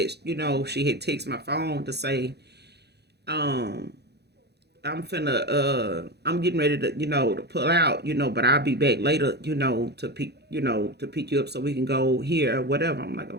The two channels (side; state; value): left; late; 0.48 ms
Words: she had texted my phone to say, I'm getting ready to, to pull out, but I'll be back later, to pick you up so we can go here or whatever. I'm like,